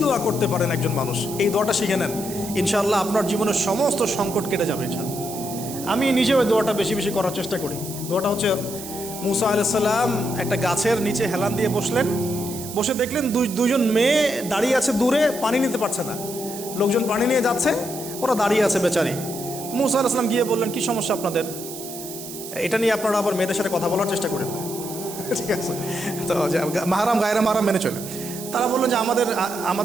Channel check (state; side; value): noise; right; hiss, 11 dB below the sound